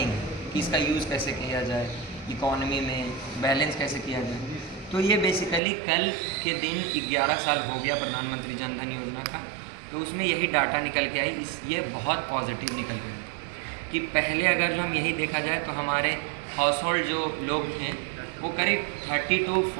है कि इसका यूज़ कैसे किया जाए, इकॉनमी में बैलेंस कैसे किया जाए। तो ये बेसिकली कल के दिन 11 साल हो गया प्रधानमंत्री जन धन योजना का, तो उसमें यही डाटा निकल के आई। ये बहुत पॉजिटिव निकल के आई कि पहले अगर जो हम यही देखा जाए तो हमारे हाउस होल्ड जो लोग थे वो करीब 30 to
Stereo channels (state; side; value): drops out; left; at 5.6 s